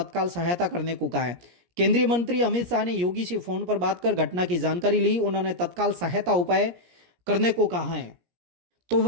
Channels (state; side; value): late; left; 17 ms